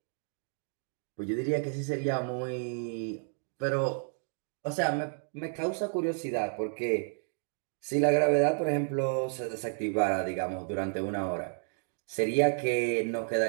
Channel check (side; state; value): left; silent; 57 dB below the other